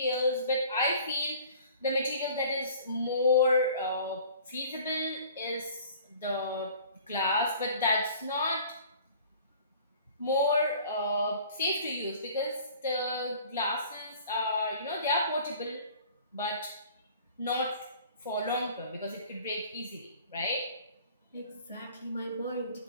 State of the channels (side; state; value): both; inverted; correlation -0.49